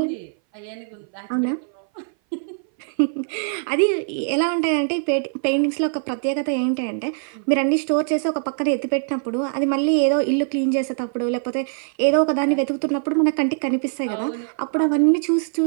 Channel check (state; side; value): silent; left; 59 dB below the other